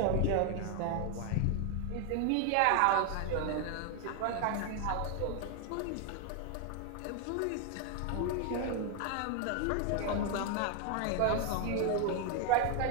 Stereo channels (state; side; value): different; both; correlation 0.01